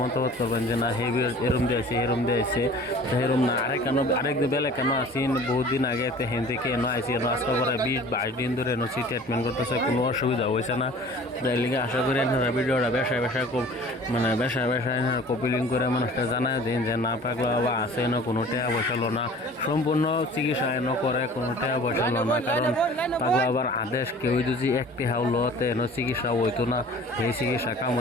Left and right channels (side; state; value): both; normal; correlation 0.46